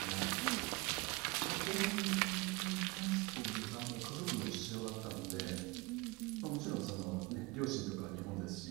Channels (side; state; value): left; quieter; 24.5 dB